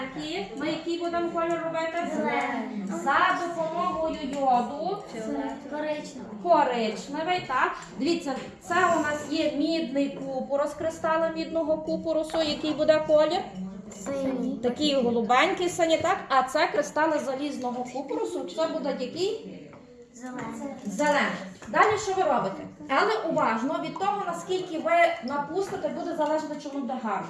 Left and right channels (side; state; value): both; identical; correlation 1.00